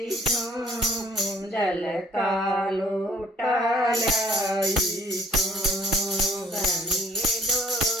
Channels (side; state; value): both; normal; correlation 0.58